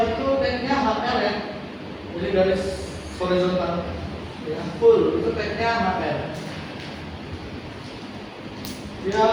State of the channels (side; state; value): both; identical; correlation 1.00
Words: itu tagnya HL ya. Jadi garis horizontal. Ya, full itu tagnya HL. Dia